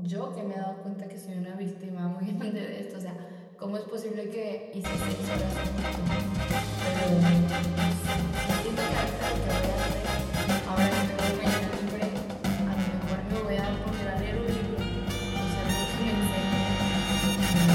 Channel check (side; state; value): both; identical; correlation 1.00